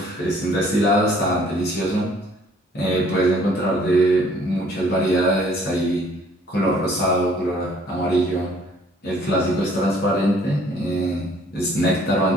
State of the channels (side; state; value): both; normal; correlation 0.59